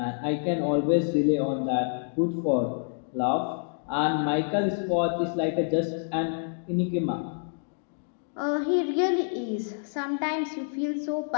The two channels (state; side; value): silent; right; digital silence